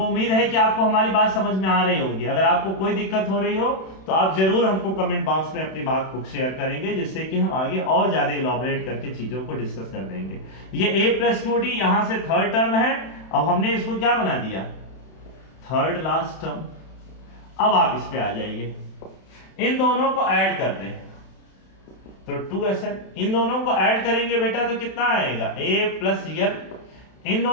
उम्मीद है कि आपको हमारी बात समझ में आ रही होगी। अगर आपको कोई दिक्कत हो रही हो तो आप जरूर हमको कमेंट बॉक्स में अपनी बात को शेयर करेंगे, जिससे कि हम आगे और ज्यादा इलॉबरेट करके चीजों को डिस्कस कर देंगे। ये A प्लस 2D यहां से थर्ड टर्म है, अब हमने इसको क्या बना दिया, थर्ड लास्ट टर्म। अब आप इस पे आ जाइए, इन दोनों को ऐड कर दें तो 2Sn। इन दोनों को ऐड करेंगे बेटा तो कितना आएगा, A प्लस L। इन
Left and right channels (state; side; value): late; right; 31 ms